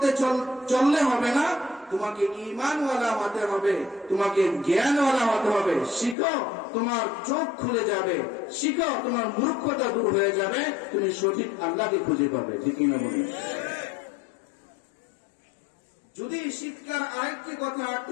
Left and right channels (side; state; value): right; drops out; at 6.2 s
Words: চললে হবে না, তোমাকে ঈমানওয়ালা হতে হবে, তোমাকে জ্ঞানওয়ালা হতে হবে। শিখো, তোমার চোখ খুলে যাবে, শিখো, তোমার মূর্খতা দূর হয়ে যাবে, তুমি সঠিক আল্লাহকে খুঁজে পাবে, ঠিক না বলি? যদি শিক্ষার আরেকটি কথা